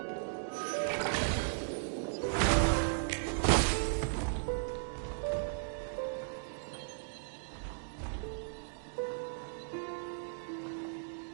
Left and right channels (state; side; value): silent; left; digital silence